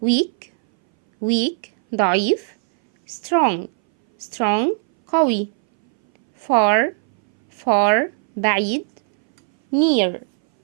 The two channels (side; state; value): left; silent; 63 dB below the other